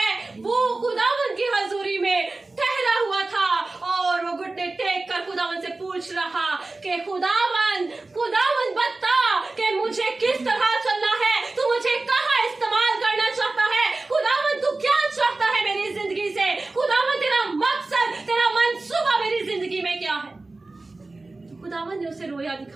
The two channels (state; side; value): quieter; left; 3.3 dB